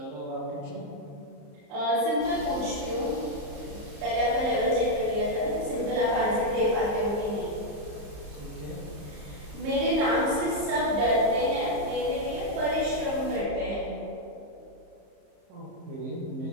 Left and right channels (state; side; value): late; left; 34 ms